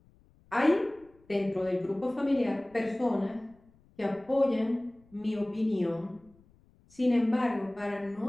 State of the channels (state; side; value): noise; left; rumble, 30 dB below the sound